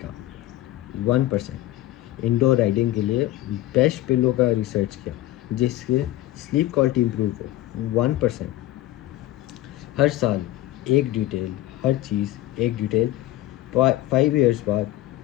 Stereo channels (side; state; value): right; quieter; 15.5 dB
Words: 1%। इंडोर राइडिंग के लिए बेस्ट पिलो का रिसर्च किया जिससे स्लीप क्वालिटी इम्प्रूव हो, 1%। हर साल एक डिटेल, हर चीज़ एक डिटेल। 5 इयर्स बाद